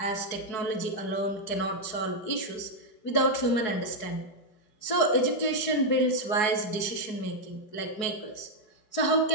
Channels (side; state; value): right; late; 4.7 ms